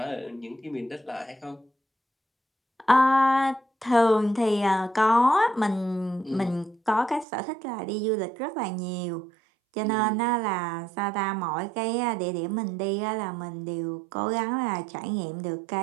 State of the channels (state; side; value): drops out; left; at 7.2 s